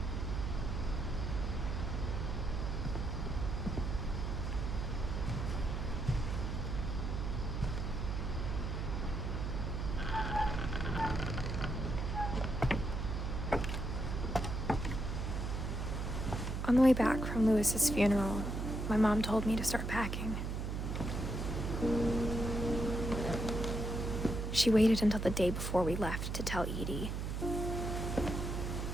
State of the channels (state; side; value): noise; right; hum, 2 dB below the sound